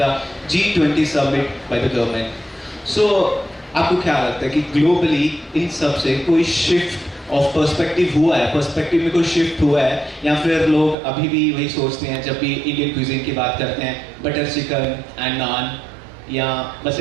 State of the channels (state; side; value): drops out; left; at 11.0 s